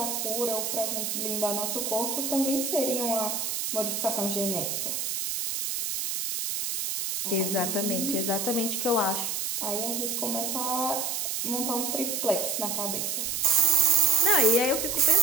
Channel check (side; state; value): right; noise; hiss, 2 dB below the sound